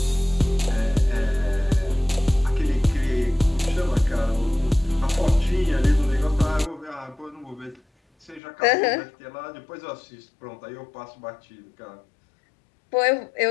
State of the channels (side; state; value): right; drops out; at 8.4 s